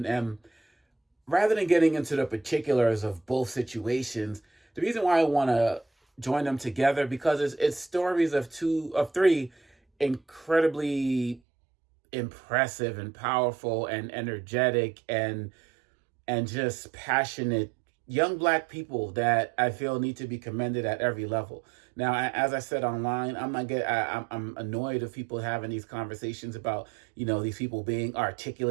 And rather than getting into the particulars of both situations, the reason why I want to join them together because it's stories of three incredibly impressive and powerful and energetic and just passionate young black people that I feel need to be commended at every level. Now, as I said online, I'm annoyed of people having these conversations about these people being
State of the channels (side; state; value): left; drops out; at 11.4 s